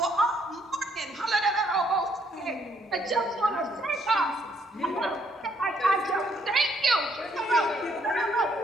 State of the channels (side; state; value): both; normal; correlation 0.69